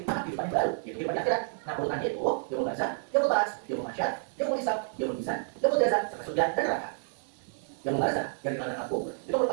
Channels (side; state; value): left; silent; digital silence